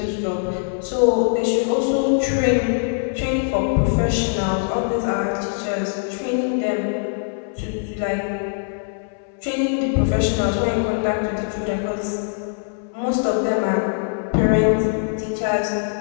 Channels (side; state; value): right; silent; 64 dB below the other